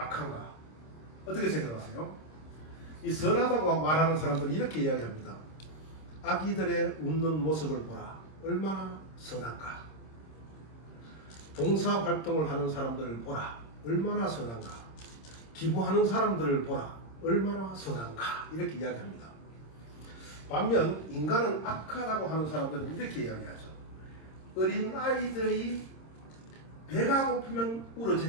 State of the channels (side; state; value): right; late; 26 ms